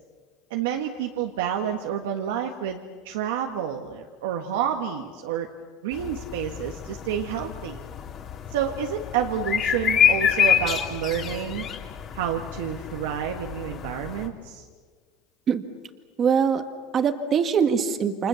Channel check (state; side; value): normal; both; correlation 0.36